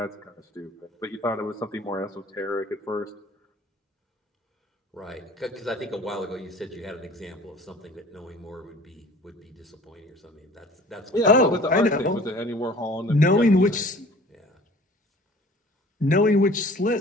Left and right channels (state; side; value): normal; both; correlation 0.48